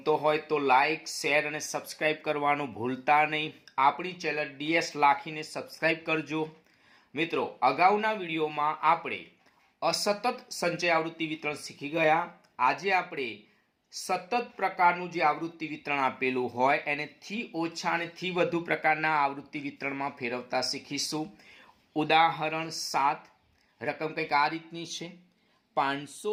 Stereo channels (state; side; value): identical; both; correlation 1.00